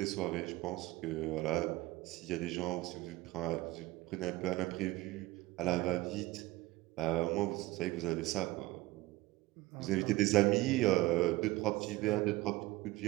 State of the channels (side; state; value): left; quieter; 18.9 dB